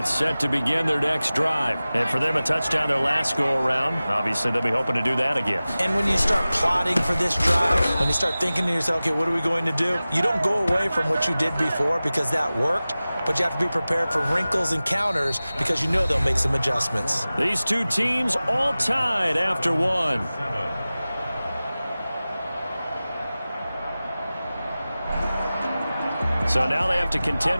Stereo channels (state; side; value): inverted; both; correlation -0.97